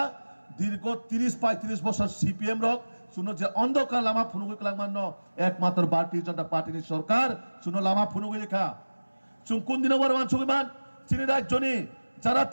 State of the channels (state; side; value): inverted; both; correlation -1.00